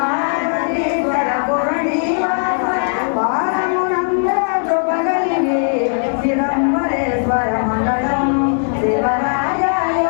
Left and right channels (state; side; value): silent; right; digital silence